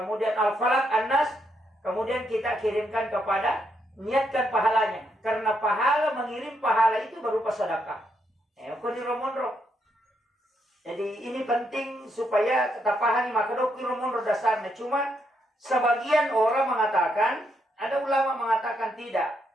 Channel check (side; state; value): both; normal; correlation 0.78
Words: Al-Falaq, An-Nas, kemudian kita kirimkan kepada niatkan pahalanya. Karena pahala mengirim pahala itu berupa sedekah. Jadi ini penting supaya kita pahami maka dokter dasarnya. Cuma sebagian orang mengatakan, ada ulama mengatakan tidak.